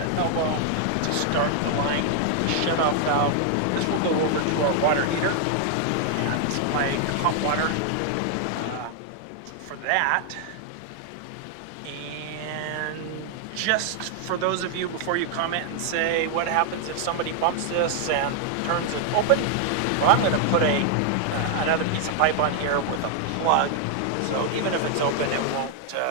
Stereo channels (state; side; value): different; both; correlation 0.00